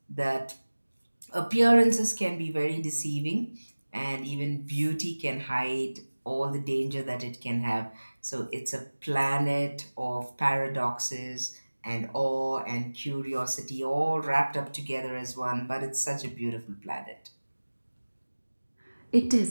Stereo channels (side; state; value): both; inverted; correlation -1.00